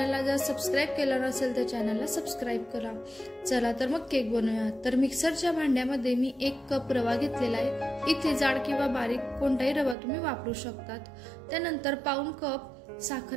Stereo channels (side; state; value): left; drops out; at 10.0 s